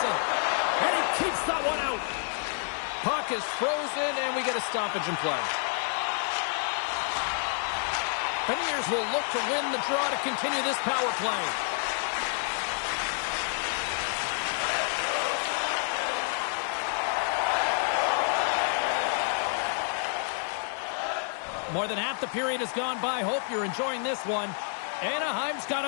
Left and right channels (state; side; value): silent; right; 59 dB below the other